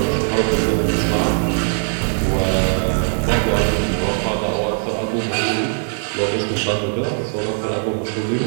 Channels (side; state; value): left; silent; 59 dB below the other